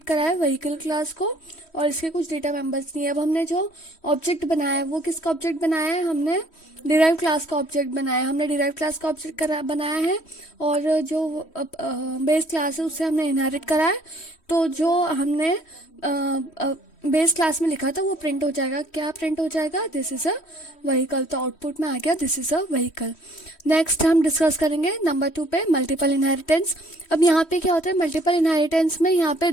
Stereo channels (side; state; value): right; late; 3.1 ms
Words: करा है व्हीकल क्लास को, और इसके कुछ डेटा मेंबर्स नहीं है। अब हमने जो ऑब्जेक्ट बनाया है वो किसका ऑब्जेक्ट बनाया है? हमने डिराइव क्लास का ऑब्जेक्ट बनाया है। हमने डिराइव क्लास का ऑब्जेक्ट बनाया है और जो बेस क्लास है उससे हमने इनहेरिट करा है। तो जो हमने बेस क्लास में लिखा था वो प्रिंट हो जाएगा। क्या प्रिंट हो जाएगा? This is a vehicle. तो आउटपुट में आ गया this is a vehicle. Next हम डिस्कस करेंगे नंबर 2 पे मल्टीपल इनहेरिटेंस। अब यहाँ पे क्या होता है मल्टीपल इनहेरिटेंस में? यहाँ पे